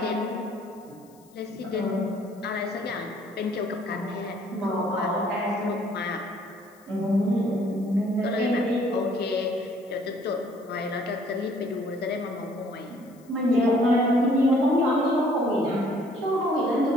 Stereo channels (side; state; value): left; noise; hiss, 29 dB below the sound